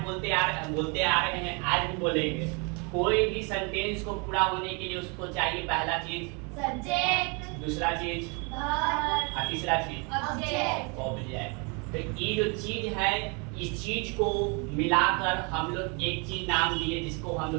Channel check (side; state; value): left; quieter; 32.5 dB